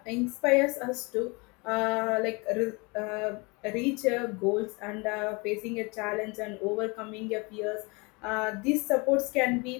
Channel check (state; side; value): quieter; right; 28.4 dB